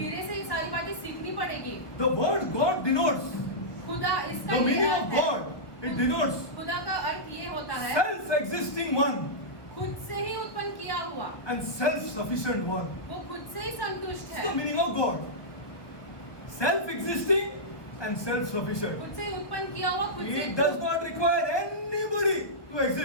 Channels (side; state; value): right; late; 1.4 ms